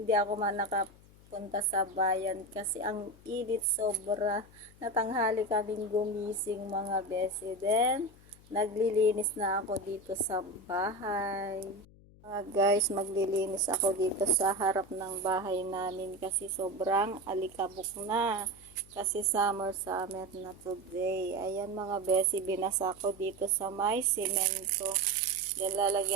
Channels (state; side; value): noise; left; hum, 24 dB below the sound